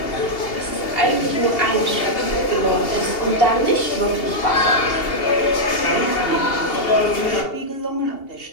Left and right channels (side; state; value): right; late; 2.8 ms